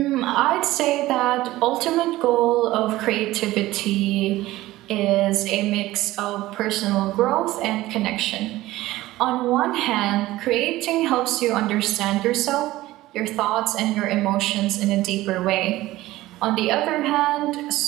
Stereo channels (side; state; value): left; quieter; 17.0 dB